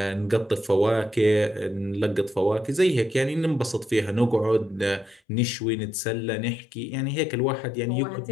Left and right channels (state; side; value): drops out; right; at 5.2 s